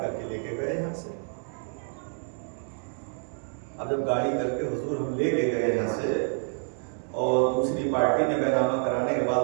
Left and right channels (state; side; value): silent; left; 57 dB below the other